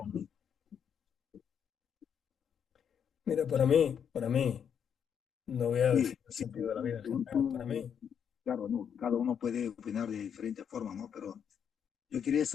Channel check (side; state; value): right; quieter; 7.9 dB